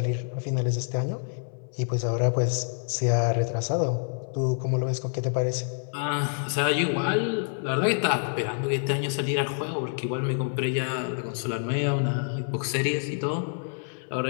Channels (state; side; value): silent; right; 59 dB below the other